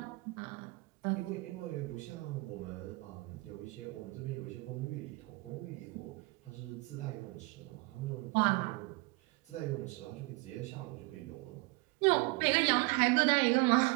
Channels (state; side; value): quieter; left; 24.5 dB